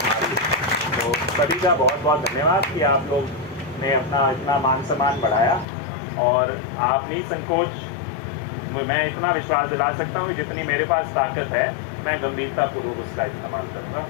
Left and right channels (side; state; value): right; drops out; at 5.7 s